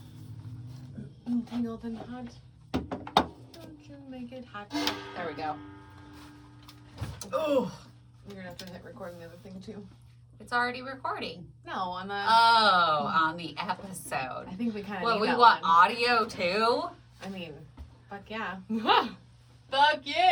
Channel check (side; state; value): both; identical; correlation 1.00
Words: Tangled and hot. Don't you make it hot. There we go. Oh. You're gonna have to hit record on the other thing too. It's already recording. No, on the. Oh, on the episode. I think we kind of. Well, need we that want one. audio too. I mean, fuck yeah. Fuck